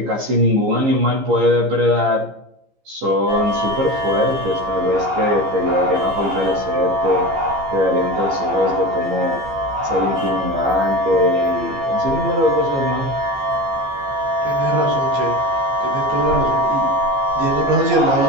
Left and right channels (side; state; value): left; late; 15 ms